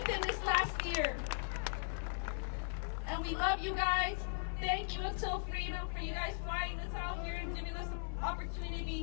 this last year. And we love you guys. Thank you until freedom for you guys flying us out here and giving us an opportunity to be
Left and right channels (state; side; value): silent; right; 52 dB below the other